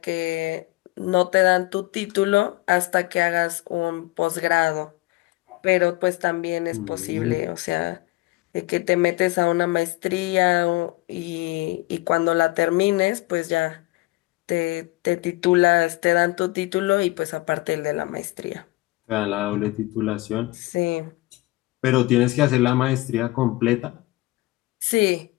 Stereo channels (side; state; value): right; quieter; 20.8 dB